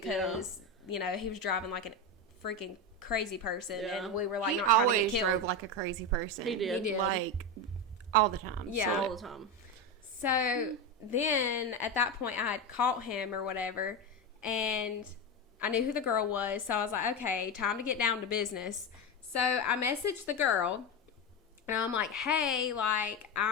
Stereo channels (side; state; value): both; normal; correlation 0.15